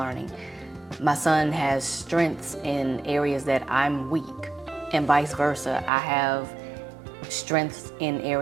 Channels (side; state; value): left; drops out; at 5.9 s